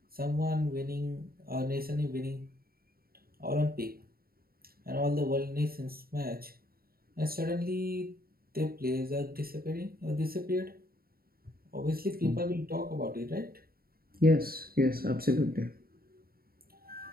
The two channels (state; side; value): late; left; 0.43 ms